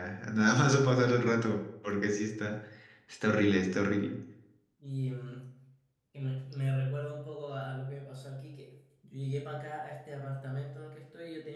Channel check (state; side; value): identical; both; correlation 1.00